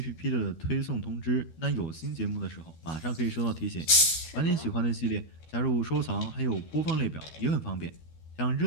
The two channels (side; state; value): right; late; 13 ms